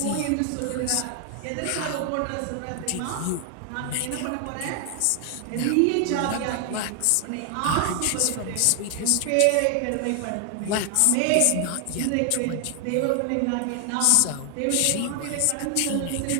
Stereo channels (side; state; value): both; different; correlation 0.00